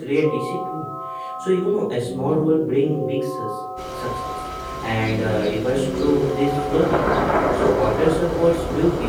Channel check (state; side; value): identical; both; correlation 1.00